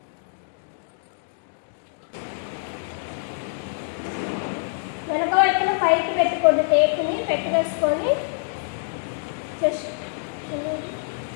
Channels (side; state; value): right; silent; digital silence